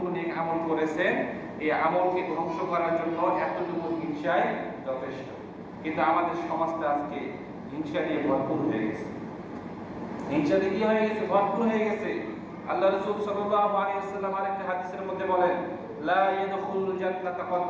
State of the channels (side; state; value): both; identical; correlation 1.00